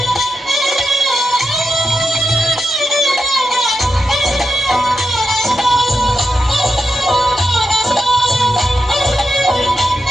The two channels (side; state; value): both; normal; correlation 0.87